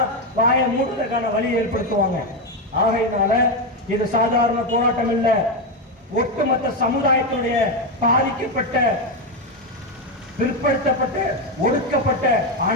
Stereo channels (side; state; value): both; normal; correlation 0.09